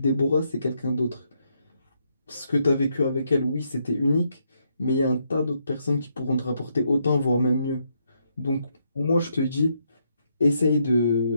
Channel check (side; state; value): both; inverted; correlation -0.77